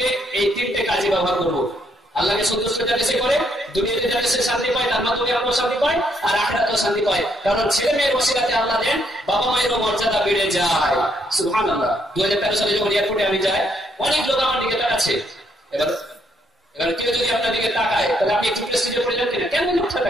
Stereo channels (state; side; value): normal; both; correlation 0.72